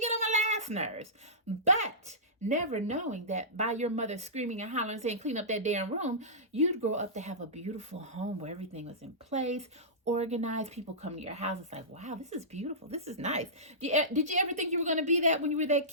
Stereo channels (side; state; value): both; normal; correlation -0.18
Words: on my last nerves. But never knowing that by your mother screaming and hollering and saying, clean up that damn room, you'd grow up to have a beautiful home where everything was in place, organized. People come to your house. It's like, wow, this is beautiful. This is nice. Did you ever think you were going to be that when you were that